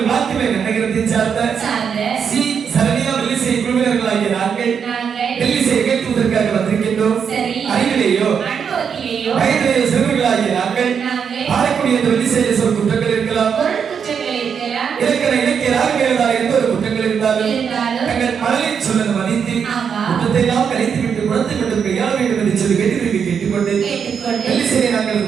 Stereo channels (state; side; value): quieter; left; 7.0 dB